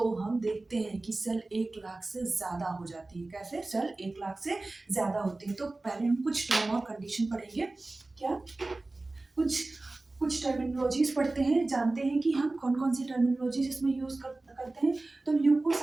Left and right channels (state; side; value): quieter; left; 3.1 dB